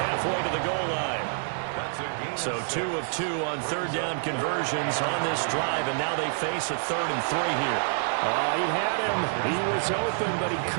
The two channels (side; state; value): left; silent; digital silence